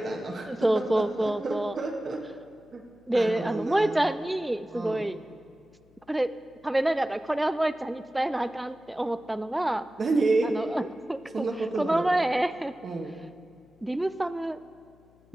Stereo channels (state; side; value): noise; left; hum, 30 dB below the sound